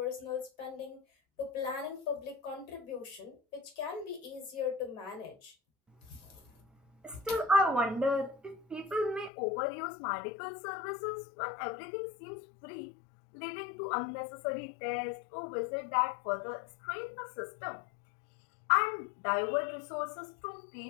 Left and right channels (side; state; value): right; drops out; at 9.3 s